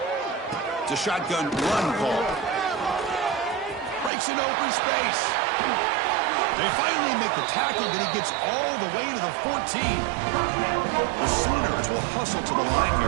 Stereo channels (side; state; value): left; drops out; at 4.1 s